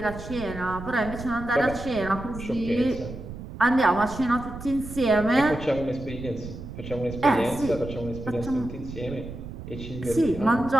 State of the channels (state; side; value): noise; right; rumble, 11 dB below the sound